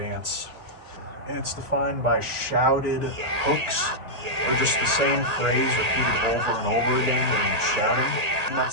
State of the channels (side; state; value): left; late; 1.8 ms